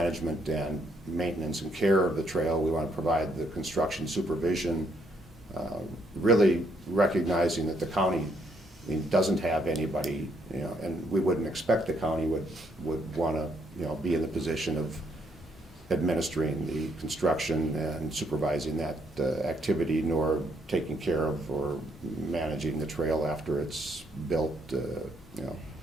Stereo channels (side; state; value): both; normal; correlation 0.72